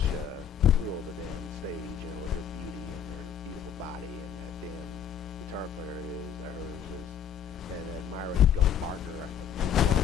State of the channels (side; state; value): right; quieter; 8.4 dB